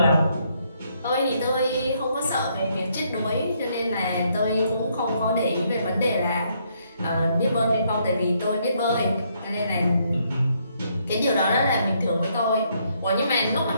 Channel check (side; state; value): both; inverted; correlation -0.72